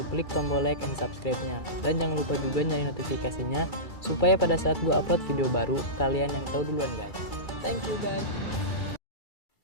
klik tombol like and subscribe-nya. Dan jangan lupa juga nyalain notifikasinya, supaya pada saat gue upload video baru, kalian yang tahu duluan guys. Thank you guys.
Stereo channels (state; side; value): late; right; 2.3 ms